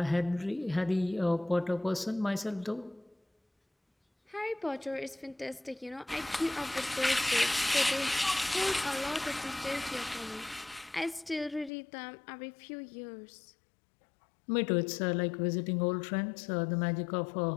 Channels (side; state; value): right; drops out; at 11.7 s